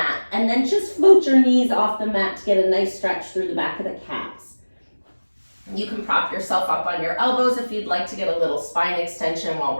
and then just float your knees off the mat to get a nice stretch through the back of the calves. You can prop yourself up on your elbows if you'd like to get a little spine extension while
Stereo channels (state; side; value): inverted; both; correlation -1.00